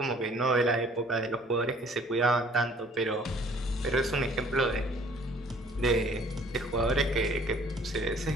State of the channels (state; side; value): normal; both; correlation 0.55